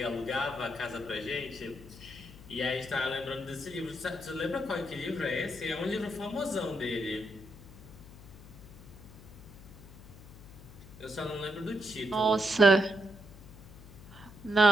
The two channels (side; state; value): left; noise; hum, 18 dB below the sound